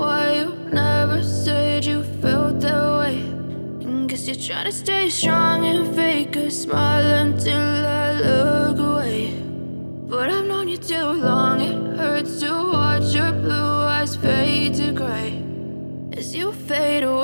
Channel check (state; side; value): inverted; both; correlation -1.00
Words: why you never said you felt that way. Guess you're trying to stay strong and fake a smile until I look away. But I've known you too long, it hurts to watch your blue eyes fade to grey as you fade